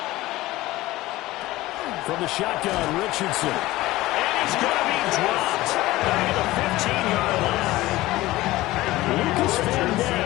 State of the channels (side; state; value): right; quieter; 17.8 dB